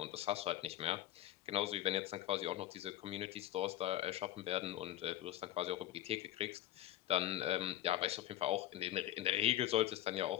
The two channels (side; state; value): right; quieter; 13.5 dB